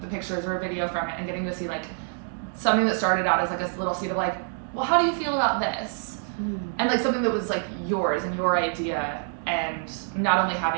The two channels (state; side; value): silent; left; 58 dB below the other